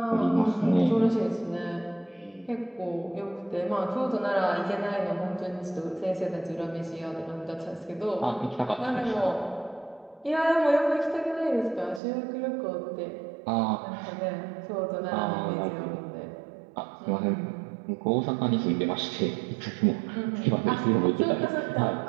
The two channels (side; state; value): left; drops out; at 12.0 s